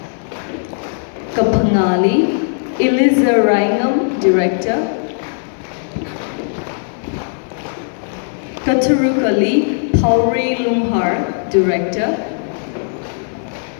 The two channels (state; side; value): silent; right; 63 dB below the other